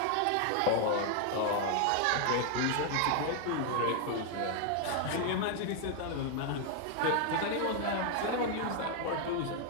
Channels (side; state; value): both; different; correlation 0.00